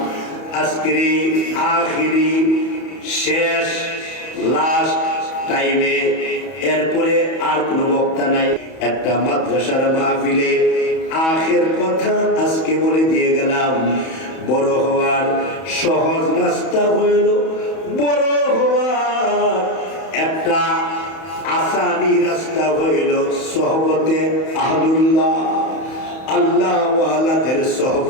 আজকের আখিরি শেষ লাস্ট টাইমে, এরপরে আর কোনো বক্তা নাই। একটা মাদ্রাসার মাহফিলে আখের কথা আজকে বলে দিয়ে গেলাম। বড় হওয়ার সহজ রাস্তা হইল, বড় হওয়ার একটা আসানি রাস্তা হইল সোহবতে আহলুল্লাহ, আল্লাহ ওয়ালাদের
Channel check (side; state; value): right; late; 31 ms